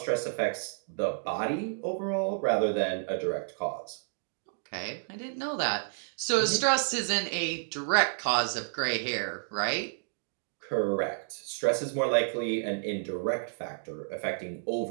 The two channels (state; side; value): silent; left; digital silence